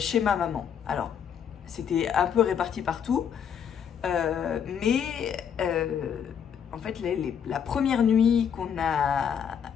ma maman. Alors c'était un peu réparti partout, mais en fait la première nuit qu'on a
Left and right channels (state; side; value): quieter; right; 7.9 dB